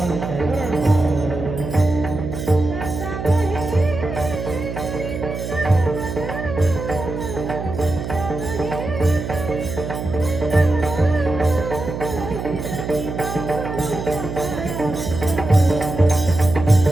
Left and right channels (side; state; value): right; noise; hum, 6 dB below the sound